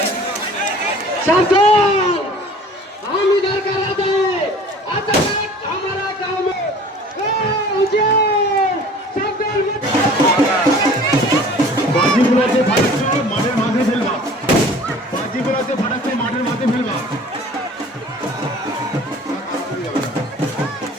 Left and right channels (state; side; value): normal; both; correlation 0.47